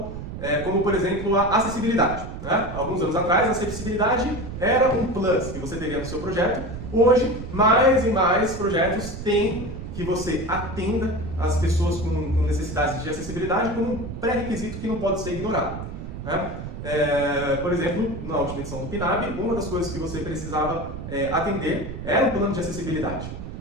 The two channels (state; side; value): noise; right; rumble, 9 dB below the sound